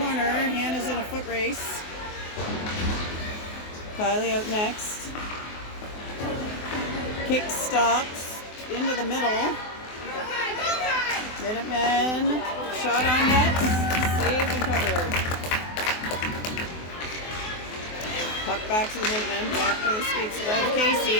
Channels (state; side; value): late; right; 24 ms